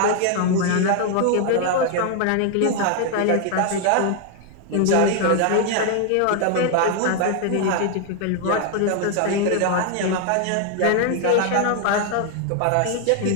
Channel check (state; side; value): different; both; correlation 0.00